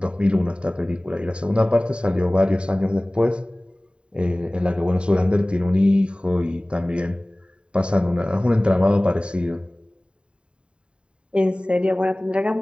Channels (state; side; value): late; left; 0.053 ms